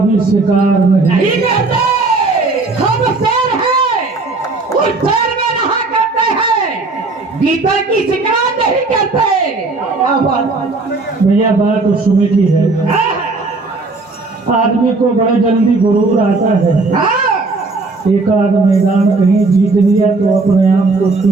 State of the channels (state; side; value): quieter; left; 3.6 dB